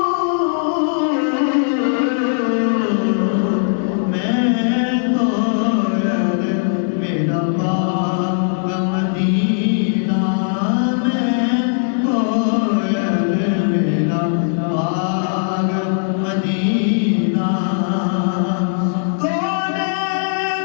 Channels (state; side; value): silent; right; digital silence